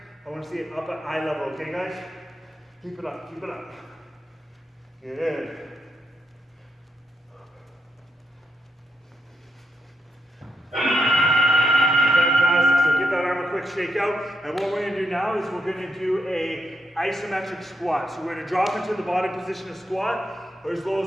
I want to see it up at eye level, okay guys? Keep it up, keep it up. Good. Fantastic, so give that arm a quick shake out. And what we're gonna do now is we're gonna do a isometric squat. So we're gonna drop into the bottom position of squat, or as low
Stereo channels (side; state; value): both; normal; correlation 0.82